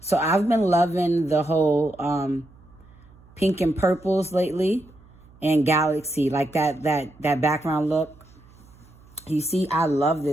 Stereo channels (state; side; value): noise; right; hum, 26 dB below the sound